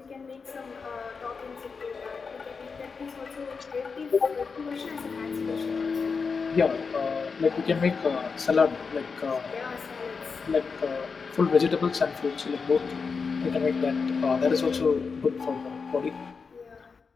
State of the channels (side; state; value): right; quieter; 5.1 dB